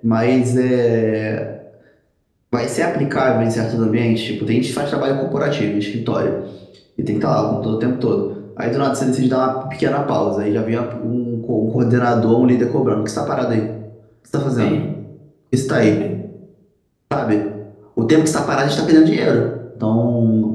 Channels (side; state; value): both; identical; correlation 1.00